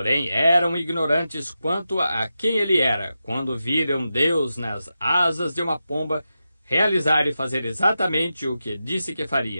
eram ignorantes quanto a quem ele era, quando viram Deus nas asas de uma pomba realizar e fazer exatamente o que disse que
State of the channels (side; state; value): both; inverted; correlation -0.90